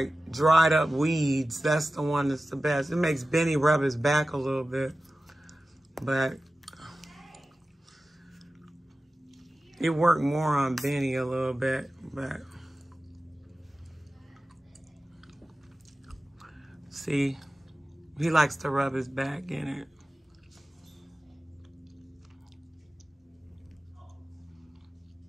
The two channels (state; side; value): normal; both; correlation 0.95